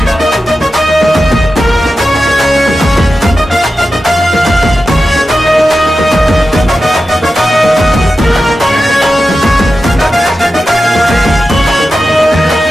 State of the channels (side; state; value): both; normal; correlation 0.92